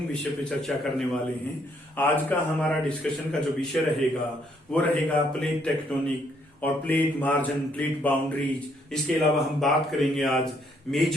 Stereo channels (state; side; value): normal; both; correlation 0.70